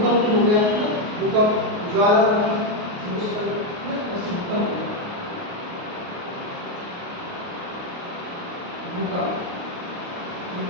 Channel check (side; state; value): left; late; 28 ms